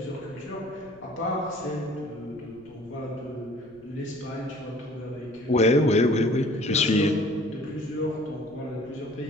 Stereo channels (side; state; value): left; noise; rumble, 27 dB below the sound